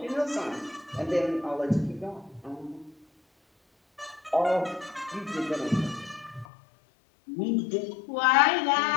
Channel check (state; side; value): drops out; right; at 6.5 s